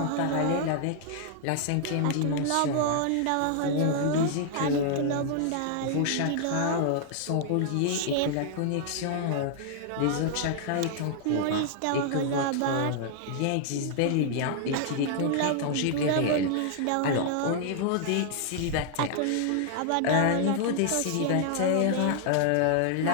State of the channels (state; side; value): different; both; correlation 0.00